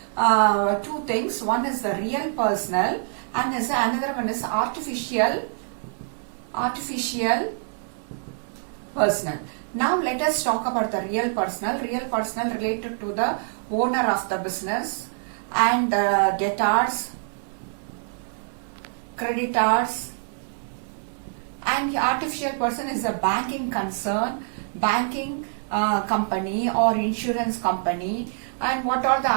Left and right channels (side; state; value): left; silent; 62 dB below the other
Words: two things. One is the real personal, and another one is artificial personal. Now let us talk about the real personal. Real personal related to the owner of the business and debtors, creditors, and the artificial person is a banking concern, banking company or insurance company, and what are the